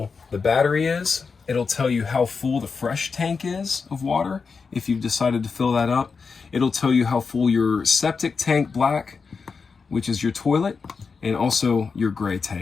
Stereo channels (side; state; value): right; quieter; 5.1 dB